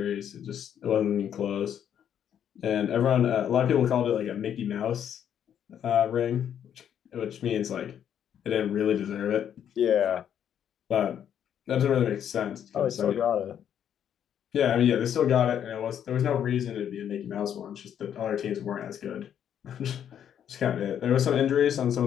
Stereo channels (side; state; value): right; quieter; 9.3 dB